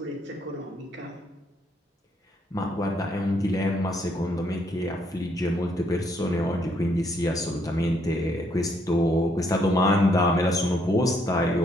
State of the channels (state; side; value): normal; both; correlation 0.71